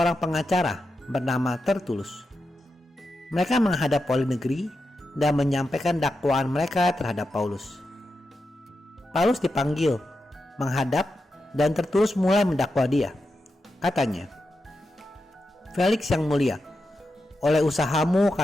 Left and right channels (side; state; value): both; normal; correlation 0.88